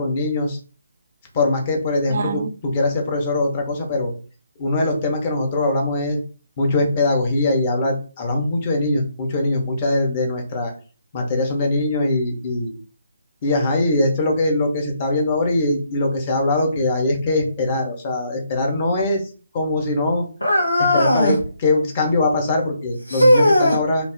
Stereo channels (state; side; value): inverted; both; correlation -0.72